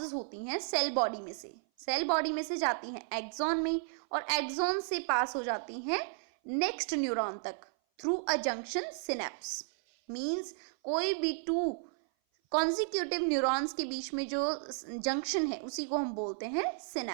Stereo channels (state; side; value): silent; left; 55 dB below the other